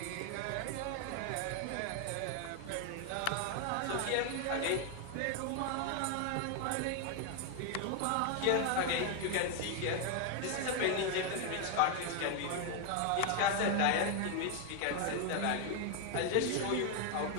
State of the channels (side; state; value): both; different; correlation 0.01